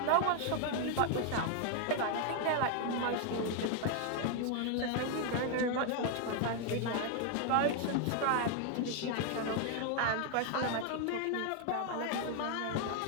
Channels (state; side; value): different; both; correlation 0.00